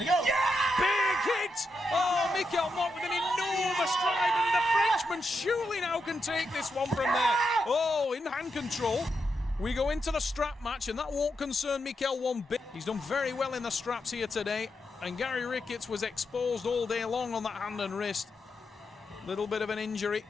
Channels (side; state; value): both; normal; correlation 0.85